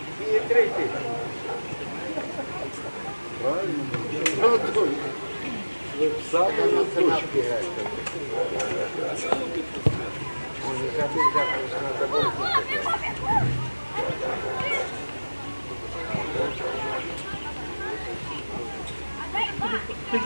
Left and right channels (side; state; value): both; inverted; correlation -1.00